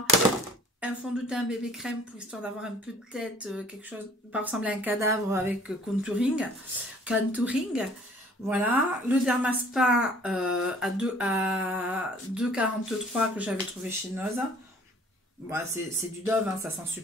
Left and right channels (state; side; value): normal; both; correlation 0.53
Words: un fond de teint bébé crème pour histoire d'avoir un peu de tête, quelque chose, pas ressembler à un cadavre avec contouring. Voilà, le Dermaspa à 2,43 que j'avais trouvé chez Noz. Bon, c'est du Dove, hein, ça sent